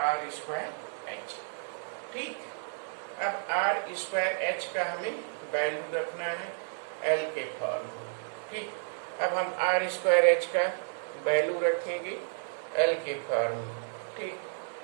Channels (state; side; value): silent; left; digital silence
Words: आर स्क्वायर एच। ठीक, अब आर स्क्वायर एच का हमें वैल्यू रखना है एल के फॉर्म में। ठीक, अब हम आर स्क्वायर एच का वैल्यू रखेंगे एल के फॉर्म में। ठीक,